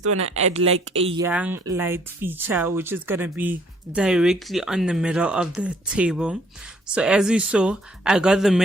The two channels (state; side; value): normal; both; correlation 0.63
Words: want to add like a young light feature, which is going to be directly on the middle of the table. So as you saw, I got the